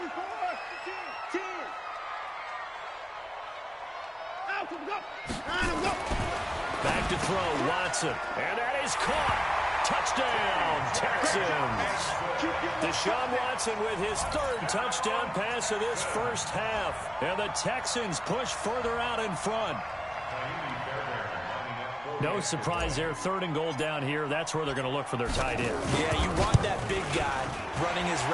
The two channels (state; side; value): identical; both; correlation 1.00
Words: Back to throw, Watson. And that is caught. Touchdown, Texans. Deshaun Watson with his 3rd touchdown pass of this first half. And the Texans push further out in front. No surprise there, 3rd and goal down here. That's where they're going to look for their tight end. Yeah, you want that big guy running his